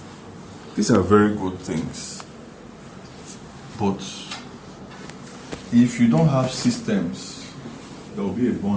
These are very good things. But if you don't have systems, there will be a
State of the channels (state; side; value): identical; both; correlation 1.00